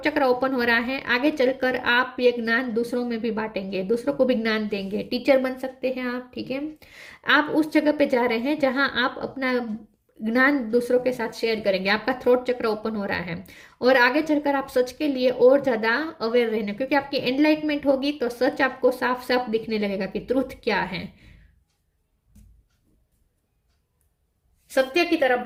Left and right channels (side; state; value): both; identical; correlation 1.00